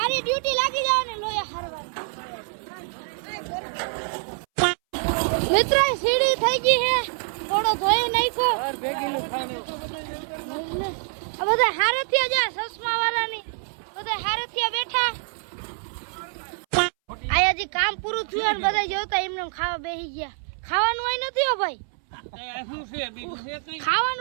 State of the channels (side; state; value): left; silent; 61 dB below the other